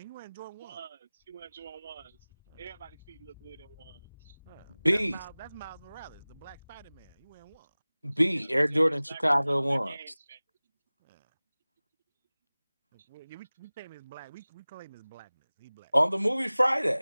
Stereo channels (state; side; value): inverted; both; correlation -0.99